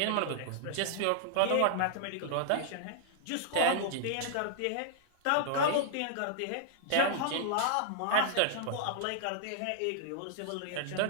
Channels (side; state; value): both; different; correlation -0.01